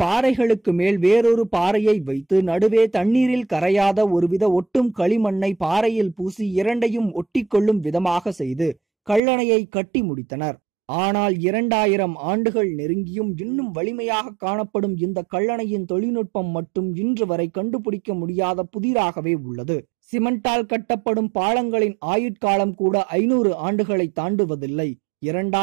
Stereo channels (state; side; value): drops out; left; at 9.2 s